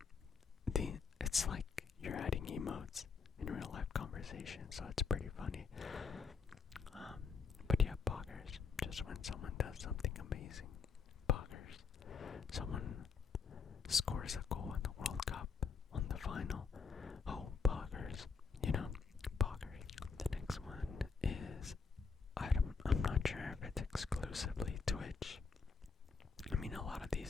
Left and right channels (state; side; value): quieter; right; 5.2 dB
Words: it's like you're adding emotes in real life conversation, so it's pretty funny. But yeah, poggers, just when someone does something amazing. Poggers. Someone scores a goal in the World Cup on the final. Oh, poggers. You know, poggers. The next one is, I'm not sure if it's exclusively Twitch. I mean, a lot of